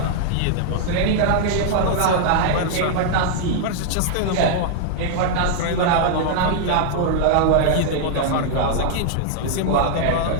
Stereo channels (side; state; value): both; different; correlation -0.01